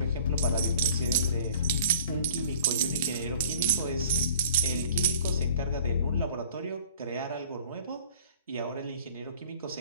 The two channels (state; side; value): inverted; both; correlation -0.48